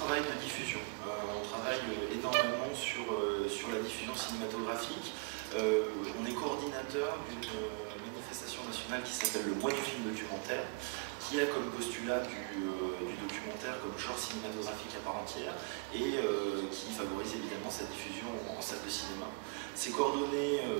de diffusion. On travaille énormément sur la diffusion cinématographique. On est coordinateur d'une manifestation nationale qui s'appelle le Mois du film documentaire, qui a comme postulat du documentaire comme genre cinématographique à part entière, et qui favorise évidemment sa diffusion en salle de cinéma. C'est coordonné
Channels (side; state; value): left; quieter; 28.8 dB